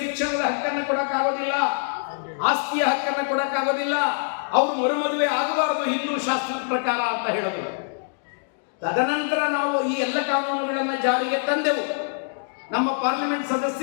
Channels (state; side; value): silent; right; digital silence